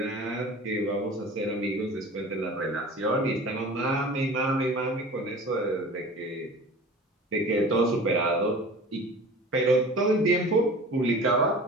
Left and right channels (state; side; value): normal; both; correlation 0.40